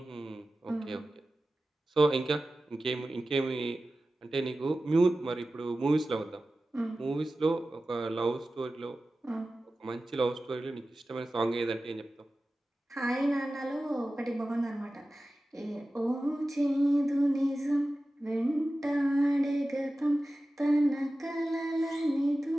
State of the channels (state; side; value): normal; both; correlation 0.95